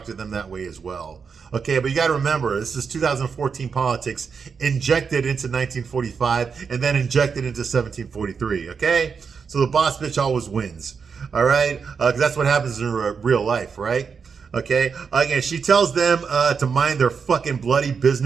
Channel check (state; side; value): quieter; left; 5.9 dB